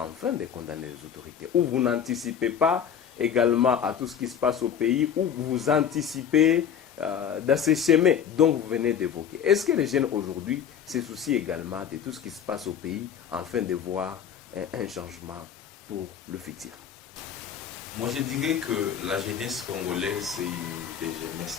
de condamner les autorités? Ou vous n'anticipez pas également à tout ce qui se passe au pays, ou vous anticipez dans ces chemins dont vous venez d'évoquer? Est-ce que les jeunes aujourd'hui se soucient également de tout ce qui se passe au pays, afin de voir un changement pour le futur? Moi, je dirais que la jeunesse congolaise, c'est une des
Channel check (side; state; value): right; quieter; 8.3 dB